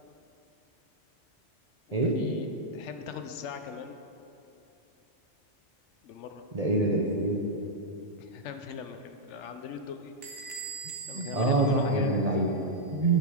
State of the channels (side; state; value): both; normal; correlation -0.05